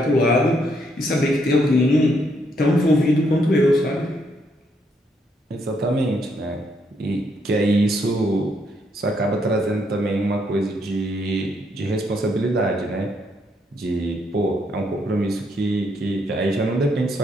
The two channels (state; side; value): normal; both; correlation 0.74